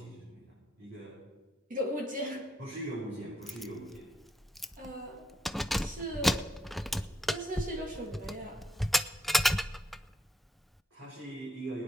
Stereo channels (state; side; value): normal; both; correlation 0.78